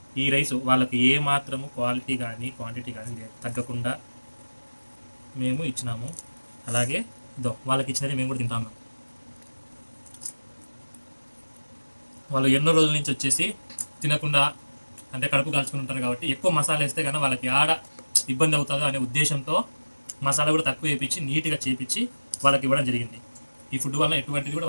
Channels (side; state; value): both; inverted; correlation -1.00